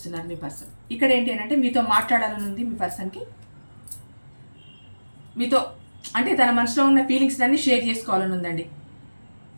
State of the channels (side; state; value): both; inverted; correlation -1.00